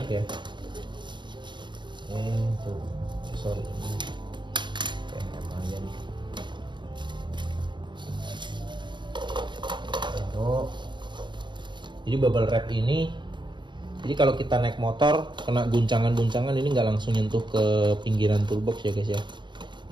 ya. Tuh, sorry, kayak aja nih. Taruh. Jadi bubble wrap ini, jadi kalau kita naik motor kena guncangan-guncangan ini nggak langsung nyentuh ke pinggiran toolbox ya guys ya,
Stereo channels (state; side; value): late; left; 0.22 ms